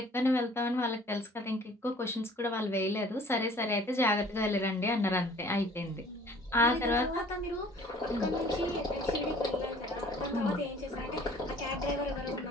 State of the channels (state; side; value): normal; both; correlation 0.52